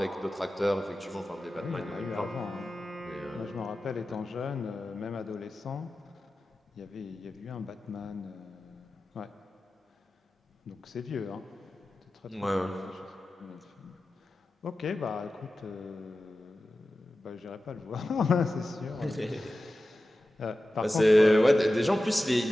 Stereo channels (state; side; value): normal; both; correlation 0.94